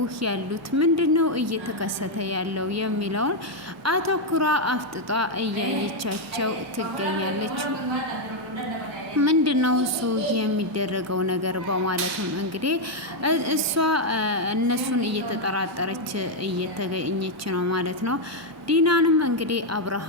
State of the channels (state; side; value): normal; both; correlation 0.01